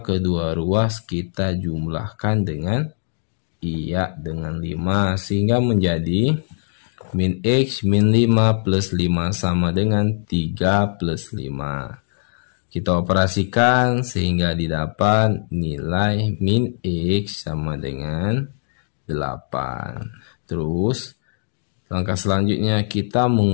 kedua ruas kita jumlahkan dengan iya dengan 5 sehingga menjadi min X min 5 plus 5 sama dengan 3 plus 5. Kita operasikan sehingga didapat nilai min X sama dengan 8. Terus langkah selanjutnya kita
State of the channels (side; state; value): right; silent; digital silence